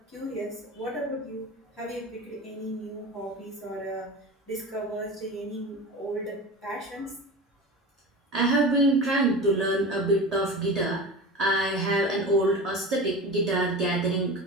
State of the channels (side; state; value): both; normal; correlation 0.31